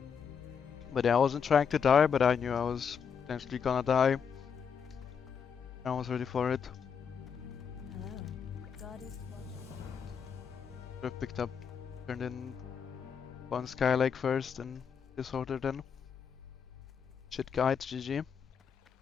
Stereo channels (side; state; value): right; quieter; 6.9 dB